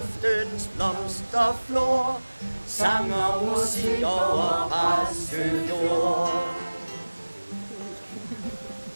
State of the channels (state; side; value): inverted; both; correlation -1.00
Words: blomsterflor. Sang og musik over Præstø-jord.